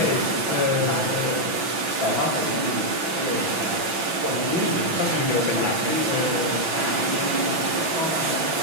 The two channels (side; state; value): left; late; 6.0 ms